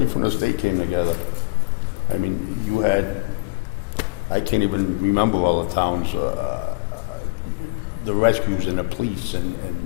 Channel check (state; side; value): quieter; right; 28.1 dB